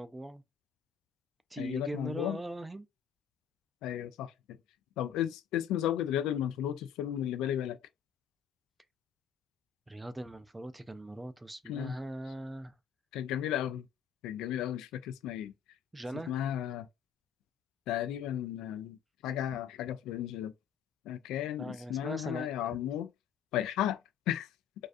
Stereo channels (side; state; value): right; quieter; 8.5 dB